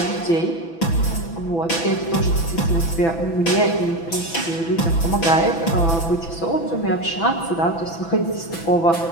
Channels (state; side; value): late; right; 6.0 ms